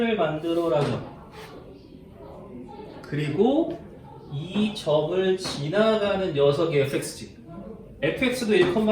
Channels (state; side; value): identical; both; correlation 1.00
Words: 만들어라죠 그리고 이 점을 지나가는 녀석이 fx지 fx도